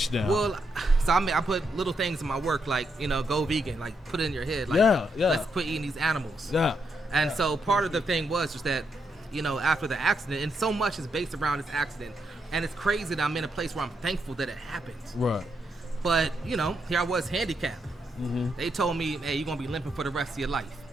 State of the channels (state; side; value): normal; both; correlation 0.80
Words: now. Well, so I put little things in my work, like, you know, go vegan, like put it in your head, like, Yeah, yeah. let's quit eating these animals. yeah, And so part of the thing was just that, you know, after the accident, and so much is based around this accident, and it's crazy that I'm in a place where I'm thankful that it happened. right. But, you know, here I was handicapped. Mm-hmm. They told me, hey, you're going to be limping for the rest of your life.